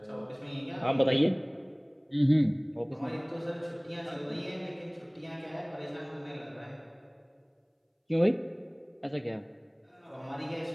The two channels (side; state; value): both; identical; correlation 1.00